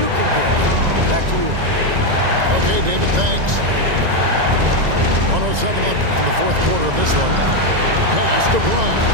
can give. Back to you. Okay, David, thanks. 107 left in the fourth quarter of this one. Pass to Bryant.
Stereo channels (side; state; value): left; late; 1.9 ms